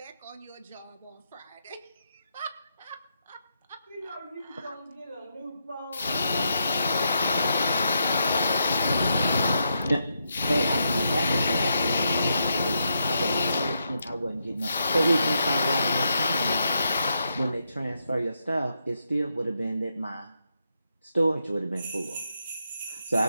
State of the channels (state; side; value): inverted; both; correlation -0.82